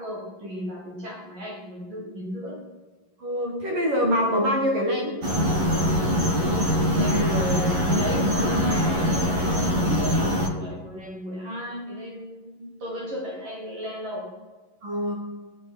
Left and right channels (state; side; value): late; left; 11 ms